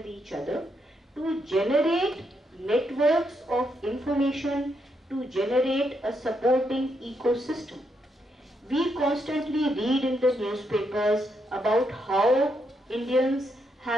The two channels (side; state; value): both; normal; correlation 0.79